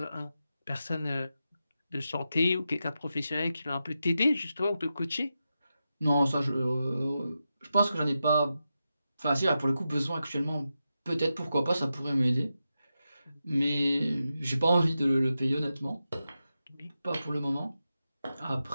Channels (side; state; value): both; inverted; correlation -0.89